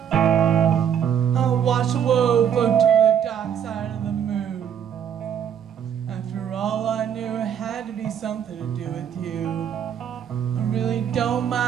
I watch the world float to the dark side of the moon. After all, I knew it had to be something to do with you. I really don't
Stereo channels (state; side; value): quieter; left; 8.7 dB